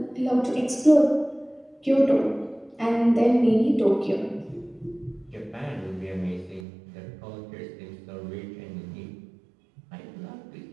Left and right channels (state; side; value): drops out; left; at 6.7 s